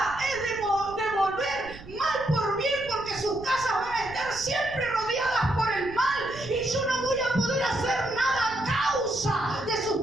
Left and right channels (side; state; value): right; noise; rumble, 17 dB below the sound